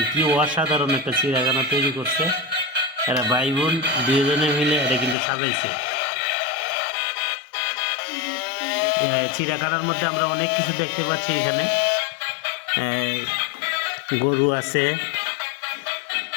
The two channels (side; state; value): right; drops out; at 5.2 s